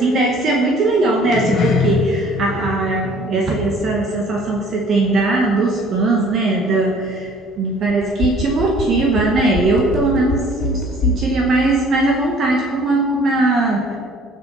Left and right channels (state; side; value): normal; both; correlation 0.54